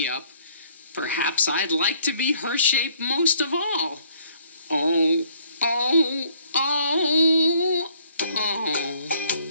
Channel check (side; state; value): both; inverted; correlation -0.63